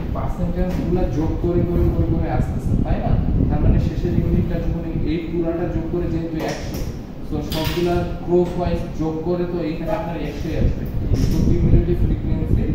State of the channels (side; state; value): both; identical; correlation 1.00